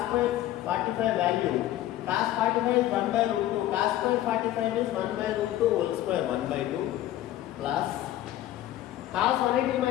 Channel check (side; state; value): right; quieter; 13.7 dB